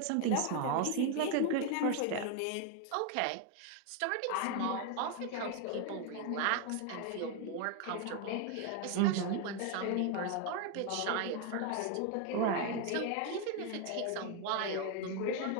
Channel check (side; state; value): both; different; correlation 0.01